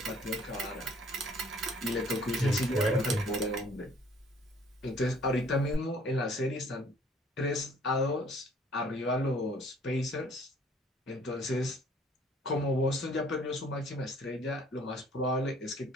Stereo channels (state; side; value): normal; both; correlation 0.57